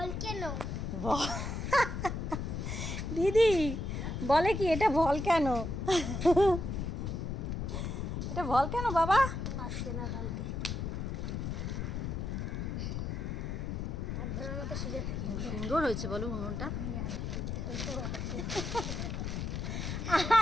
দিদি বলে কি এটা ভলক্যানো? এটা ভলক্যানো বাবা? আসছে না কালকে। ধরার মতো সুযোগ থাকি। সুন্দর হয়েছে বলো উনুনটা।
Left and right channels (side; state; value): left; noise; rumble, 3 dB below the sound